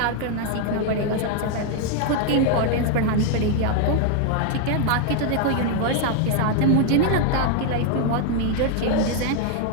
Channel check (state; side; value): different; both; correlation 0.00